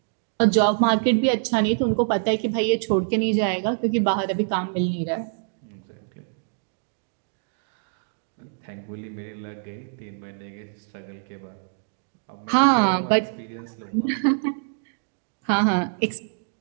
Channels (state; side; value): silent; left; digital silence